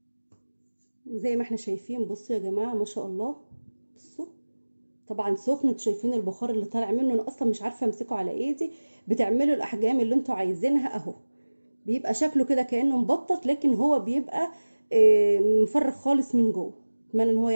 زي ما احنا شايفين بصوا يا جماعه ما شاء الله. بصوا طبعا سخن، انتوا شايفين البخار اللي طالع منه، انا اصلا مش عارفه امسكه على ايدي. بتعملوا الاحجام اللي انتوا عايزينها اهو. بيبقى شكله كده كانه مبطط، لكن هو بيبقى مفرغ خالص من جوه. اتمنى ان هو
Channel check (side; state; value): both; inverted; correlation -1.00